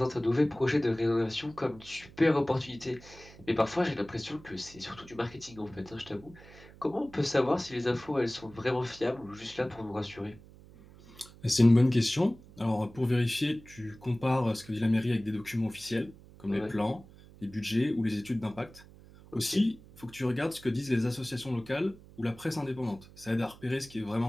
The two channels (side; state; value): right; noise; hum, 21 dB below the sound